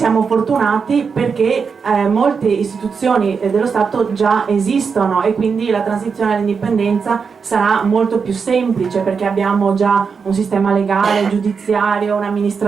fortunati perché molte istituzioni dello Stato già esistono e quindi la transizione all'indipendenza sarà molto più semplice perché abbiamo già un sistema legale, giudiziario,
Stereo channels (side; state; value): left; quieter; 5.7 dB